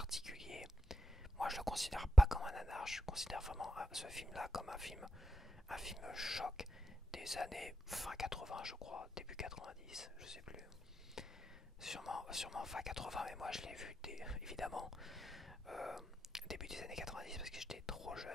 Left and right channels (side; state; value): both; normal; correlation 0.85